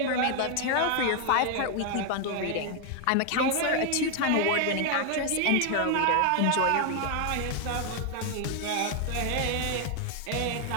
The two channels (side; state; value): both; different; correlation 0.00